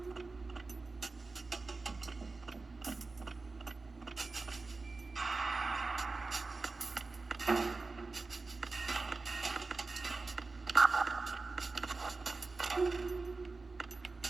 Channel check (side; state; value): left; quieter; 3.8 dB